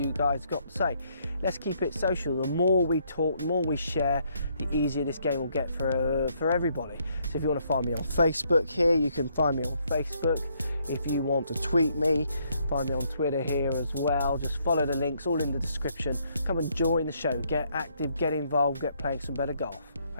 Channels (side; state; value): both; inverted; correlation -0.71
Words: guys got to say. Let's keep it social. The more we talk, the more we share, the easier this game will get for everybody. So if you want to find me on Facebook here, you can find me on Facebook. If you want to tweet me, find me on Twitter here as well. Just follow the links, all in the description. Come and join the show, get active, get involved, get playing some better golf.